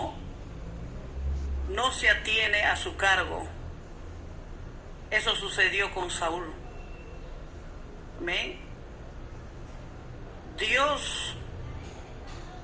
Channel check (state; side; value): identical; both; correlation 1.00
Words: se atiene a su cargo. Eso sucedió con Saúl. Amén. Dios